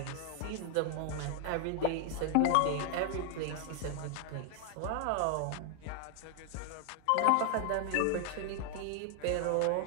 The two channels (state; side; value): different; both; correlation 0.00